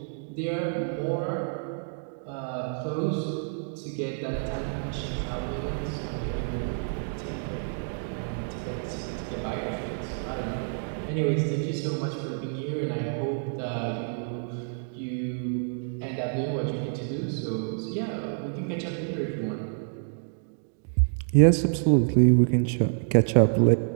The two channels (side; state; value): left; silent; digital silence